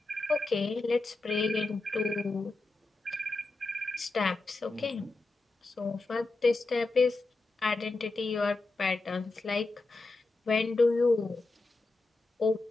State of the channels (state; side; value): quieter; right; 3.3 dB